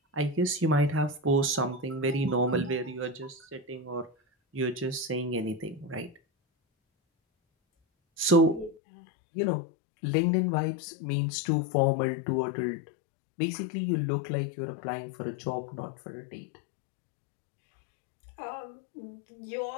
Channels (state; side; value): drops out; right; at 8.8 s